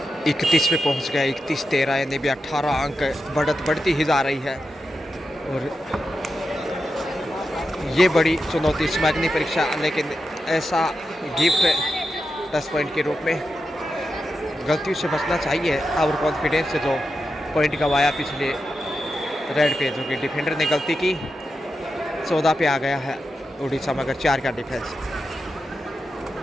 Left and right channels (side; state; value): both; normal; correlation 0.89